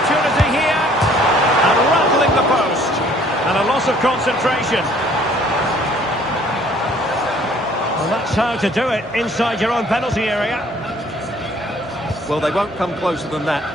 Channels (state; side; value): normal; both; correlation 0.58